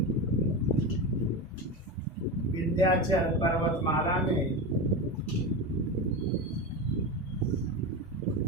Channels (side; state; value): both; normal; correlation 0.21